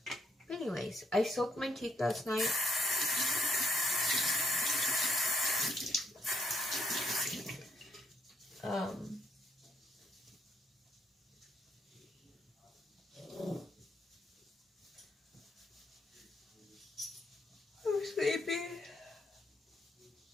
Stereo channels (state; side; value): normal; both; correlation 0.74